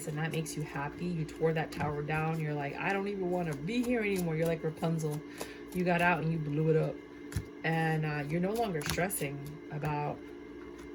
and that makes you happy. You tore that tower down. You're like, I don't even want to be here anymore. You're like Rapunzel. You got out and you blew it up. And you're no longer stressing about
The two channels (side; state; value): both; identical; correlation 1.00